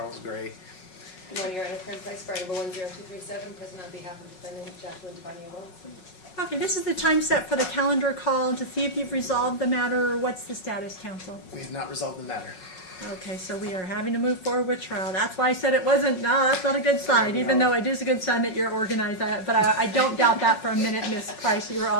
Gray. Good morning, Your Honor. Friend Price, Variable 10237, present on behalf of defendant Jacqueline Davinia Williamson. Okay, this is the time set for the calendar call to see if you've resolved the matter. What's the status, counsel? We have not resolved the matter. Okay, so we are having to move forward with trial. That's why I said it wasn't, no, that's not a good sign, even though it is a good sign that you're organized. But I don't doubt that for a minute, Ms. Price. You're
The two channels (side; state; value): right; late; 5.4 ms